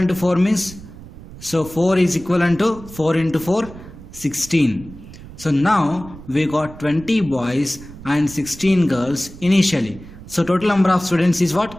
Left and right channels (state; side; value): noise; right; rumble, 17 dB below the sound